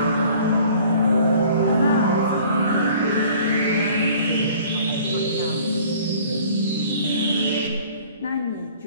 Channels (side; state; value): both; inverted; correlation -0.51